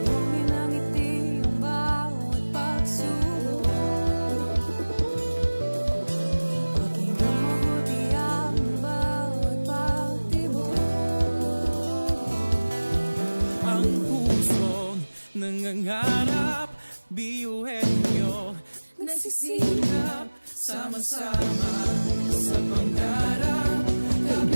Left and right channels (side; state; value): both; inverted; correlation -1.00